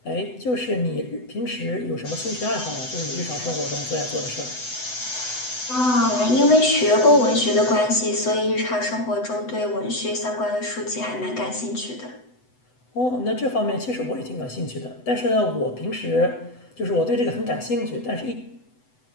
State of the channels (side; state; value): right; late; 8.0 ms